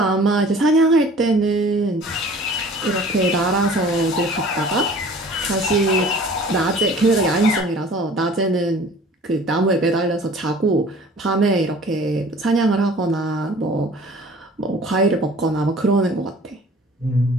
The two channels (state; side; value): normal; both; correlation 0.48